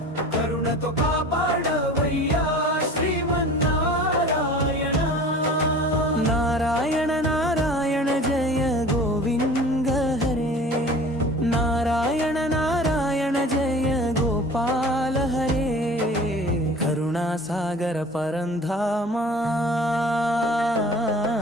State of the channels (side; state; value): both; normal; correlation 0.42